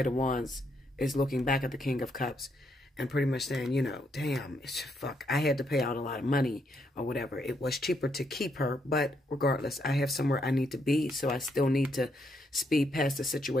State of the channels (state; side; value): normal; both; correlation 0.76